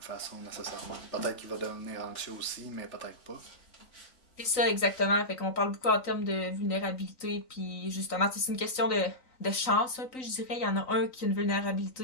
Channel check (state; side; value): late; right; 3.9 ms